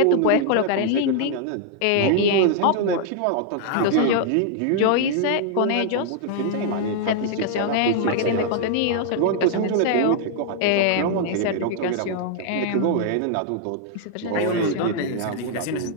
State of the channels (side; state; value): both; different; correlation 0.00